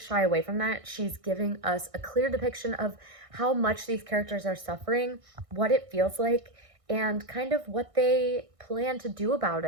shy away from that. She's giving us a clear depiction of how much these characters are suffering, what it feels like, and kind of what they plan to do about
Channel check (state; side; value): late; left; 1.6 ms